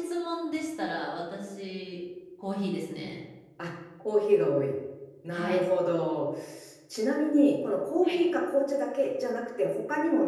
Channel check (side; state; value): both; identical; correlation 1.00